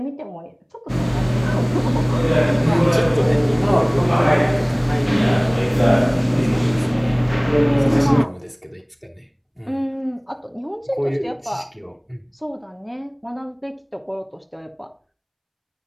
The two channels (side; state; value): both; identical; correlation 1.00